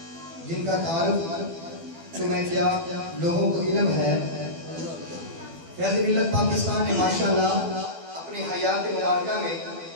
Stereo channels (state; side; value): late; left; 12 ms